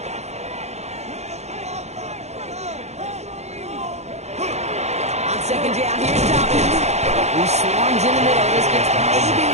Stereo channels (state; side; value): late; left; 0.32 ms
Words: On 2nd down, here's Dobbins. He swarms in the middle. This gets maybe